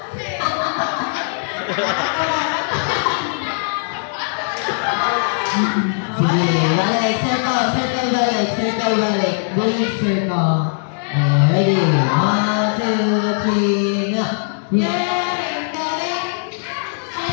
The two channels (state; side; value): silent; right; digital silence